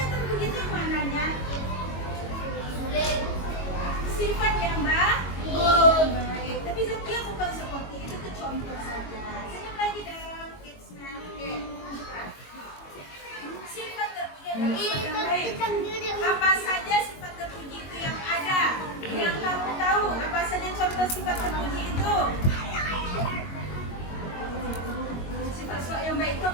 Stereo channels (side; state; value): right; late; 22 ms